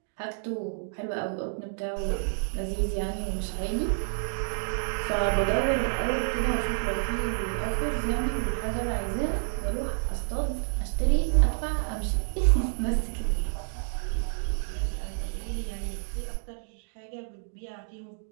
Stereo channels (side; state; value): left; silent; digital silence